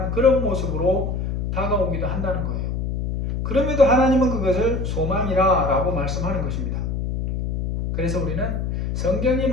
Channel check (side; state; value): left; noise; hum, 2 dB below the sound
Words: 그런 모습으로 다가오기도 한다는 거예요. 그럼에도 하나님은 그것을 소망이라 라고 말씀하는 것입니다. 그래서 우리는 성경이